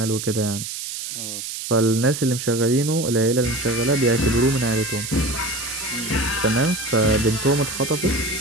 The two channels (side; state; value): right; noise; hiss, 7 dB below the sound